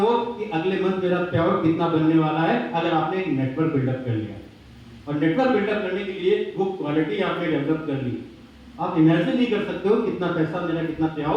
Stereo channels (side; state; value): both; identical; correlation 1.00